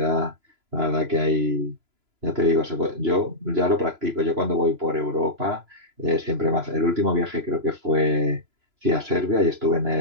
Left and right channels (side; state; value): left; late; 3.0 ms